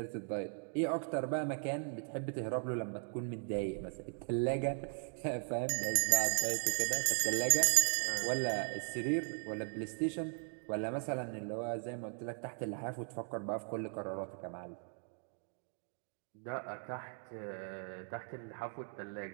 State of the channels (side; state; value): left; silent; 52 dB below the other